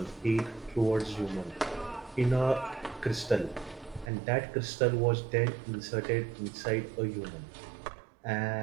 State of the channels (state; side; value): drops out; left; at 4.1 s